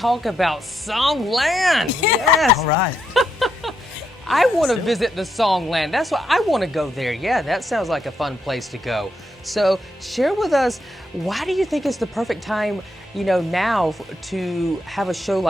about Songland. Yes. All right. I want to visit the Songland. That's why I want to go there. Yeah, that sounds like a fun place to go. So share with us, why do you think it's the perfect time, now to have a show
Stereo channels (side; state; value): both; normal; correlation 0.80